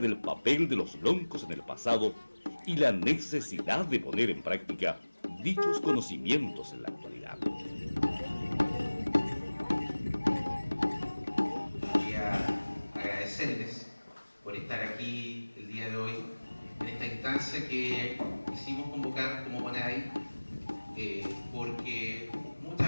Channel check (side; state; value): both; inverted; correlation -1.00